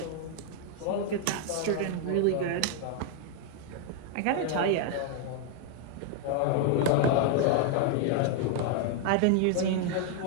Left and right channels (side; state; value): both; different; correlation 0.00